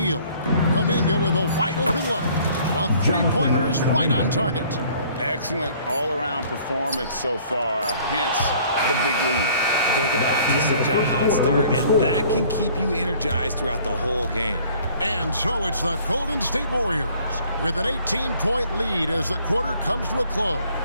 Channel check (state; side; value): inverted; both; correlation -0.56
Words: Kuminga with a wide open look. A 3-pointer is right on target. Excellent all-around performance so far, hence the big lead. They got off to such a hot start, and that can keep you energized throughout the whole game. And so it's the Golden State Warriors with an 18-point lead as the quarter comes to a close.